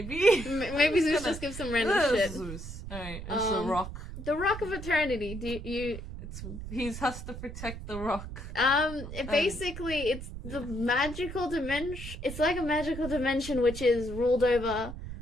Maybe Zeus just gives some random shit. Zeus. Alright, it's the rock. The Rock of Eternity, He has to protect the rock. Basically, it's the magical dimension. It's like a magical dimension which is ruled over,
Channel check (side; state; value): right; noise; rumble, 9 dB below the sound